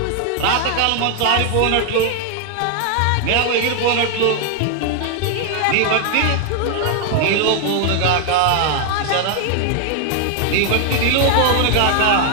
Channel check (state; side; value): different; both; correlation 0.00